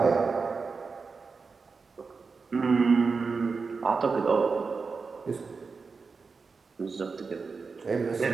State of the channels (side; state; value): left; quieter; 4.7 dB